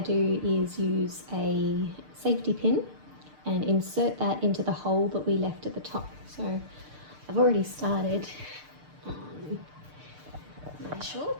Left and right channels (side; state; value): left; late; 6.7 ms